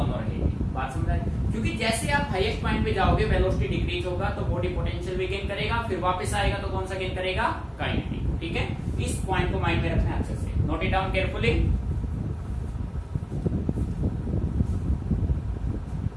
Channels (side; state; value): both; identical; correlation 1.00